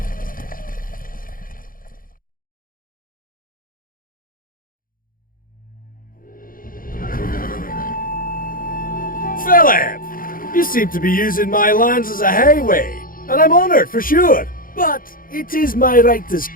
Philip! You seem to be using my lands as a highway, and I'm honoured for sure. But it is my right as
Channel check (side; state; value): right; late; 0.41 ms